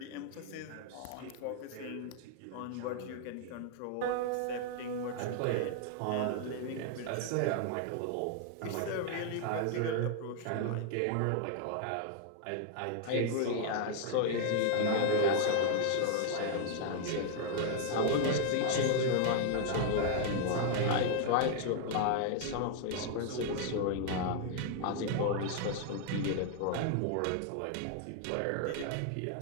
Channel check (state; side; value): different; both; correlation 0.00